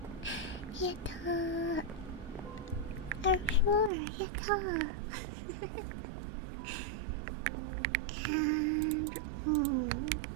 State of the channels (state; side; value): drops out; left; at 3.9 s